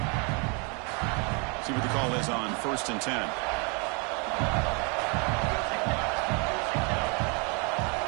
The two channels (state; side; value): quieter; left; 33.8 dB